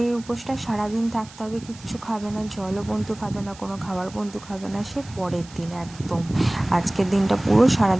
উপোসটা সারাদিন থাকতে হবে, কিচ্ছু খাবে না, জলও বন্ধু খাবে না, কোনো খাবার বন্ধু খাবে না, সে পরের দিন একদম। আজকের দিনটা পুরো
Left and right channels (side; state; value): right; noise; hiss, 20 dB below the sound